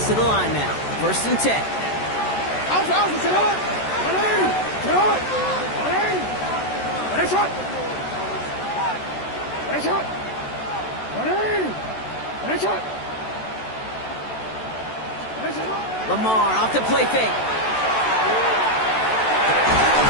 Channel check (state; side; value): late; right; 14 ms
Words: to the line now. First and 10. Lamar off to play fake.